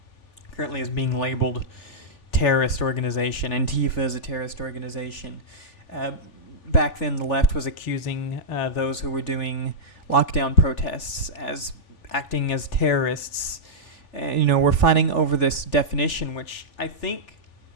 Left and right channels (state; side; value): late; right; 3.4 ms